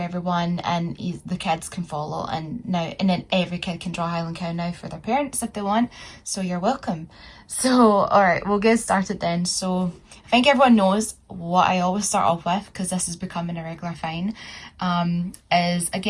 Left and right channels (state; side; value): identical; both; correlation 1.00